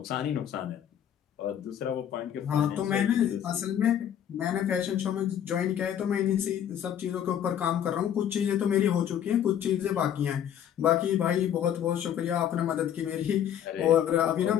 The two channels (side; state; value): right; quieter; 9.8 dB